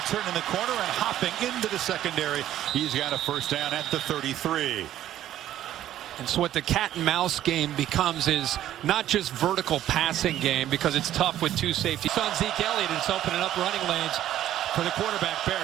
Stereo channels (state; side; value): quieter; left; 12.4 dB